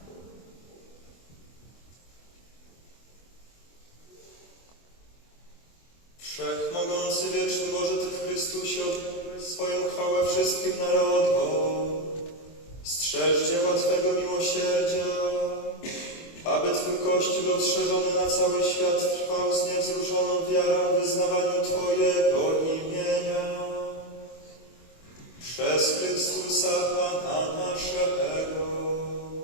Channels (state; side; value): late; right; 24 ms